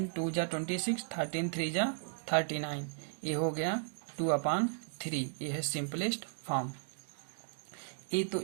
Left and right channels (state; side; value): silent; left; digital silence